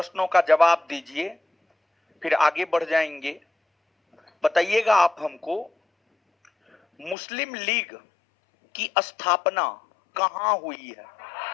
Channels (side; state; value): right; drops out; at 7.2 s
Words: का जवाब दीजिए, फिर आगे बढ़ जाएंगे। बताइएगा आप हमको, मुस्लिम लीग की स्थापना कहां हुई है?